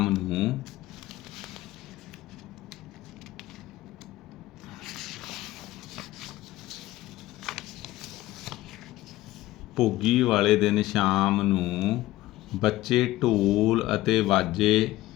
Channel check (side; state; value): right; quieter; 16.7 dB